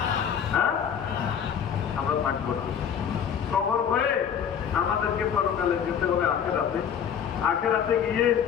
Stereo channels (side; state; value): right; quieter; 8.1 dB